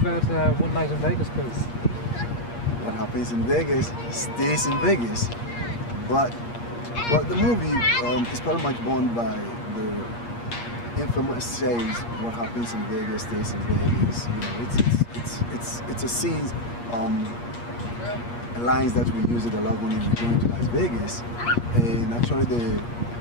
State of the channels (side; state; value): right; late; 8.5 ms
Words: One Night in Vegas, please? What happens in Vegas stays in Vegas. But the movie is pretty much born by the infamous saying, what happens in Vegas stays in Vegas. You know, it's a scene, lines that we use it a lot when we go to Las Vegas. And actually